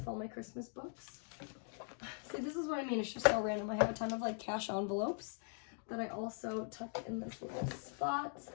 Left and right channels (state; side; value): silent; right; 50 dB below the other